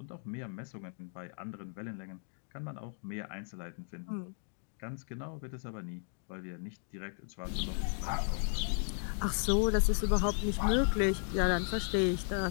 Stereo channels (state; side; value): silent; right; 54 dB below the other